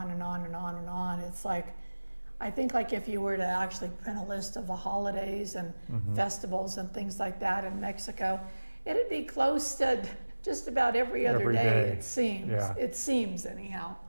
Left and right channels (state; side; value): inverted; both; correlation -1.00